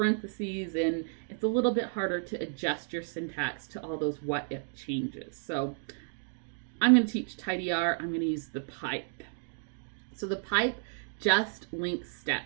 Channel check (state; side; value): silent; left; digital silence